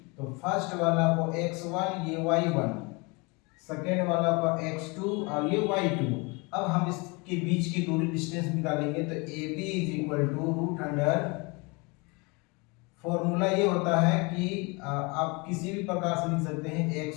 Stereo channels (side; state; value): right; quieter; 28.5 dB